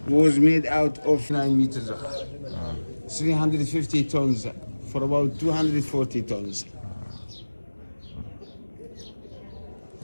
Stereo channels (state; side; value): inverted; both; correlation -1.00